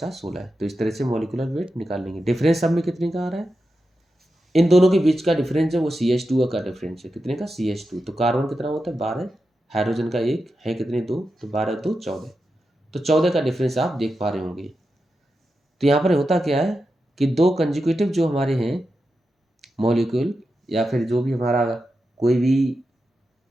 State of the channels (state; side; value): normal; both; correlation 0.89